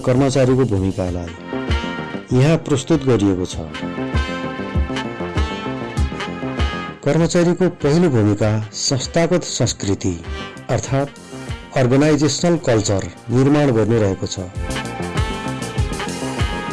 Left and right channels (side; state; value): both; identical; correlation 1.00